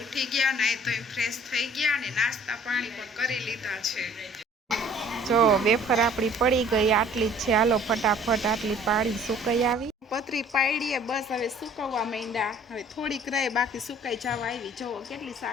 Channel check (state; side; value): normal; both; correlation 0.53